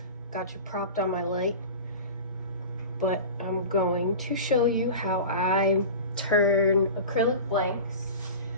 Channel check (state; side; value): inverted; both; correlation -0.33